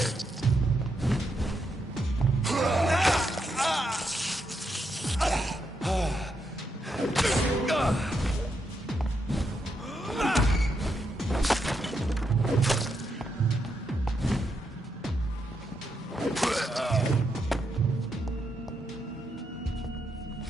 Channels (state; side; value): normal; both; correlation 0.81